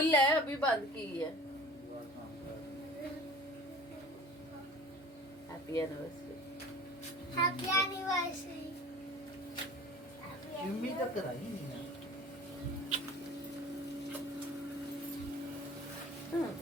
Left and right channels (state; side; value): normal; both; correlation 0.44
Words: है अभी बंद की है। Happy anniversary. Happy anniversary. Jimmy तक कराई नहीं है।